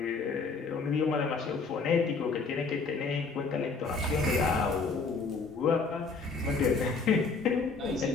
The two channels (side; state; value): right; quieter; 4.4 dB